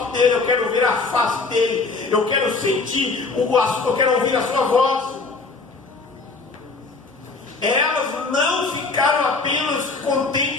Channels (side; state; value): right; quieter; 4.0 dB